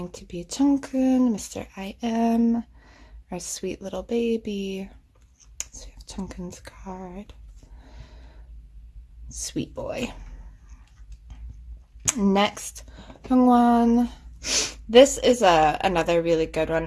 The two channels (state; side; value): identical; both; correlation 1.00